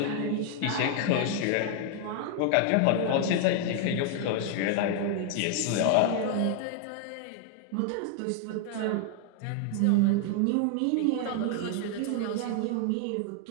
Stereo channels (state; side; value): different; both; correlation 0.00